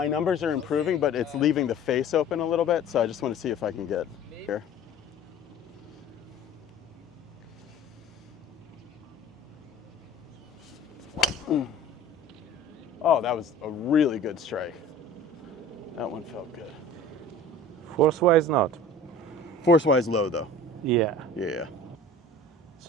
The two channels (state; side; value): normal; both; correlation 0.44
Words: numbers are improving, but it's leaving the face open a little bit, so I just want to see if I can get here. Oh, that was a really good strike. That one felt good. Force-wise, not. Force-wise low though. Yeah. Yeah.